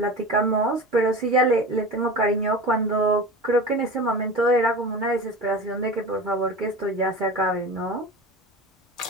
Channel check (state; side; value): normal; both; correlation 0.32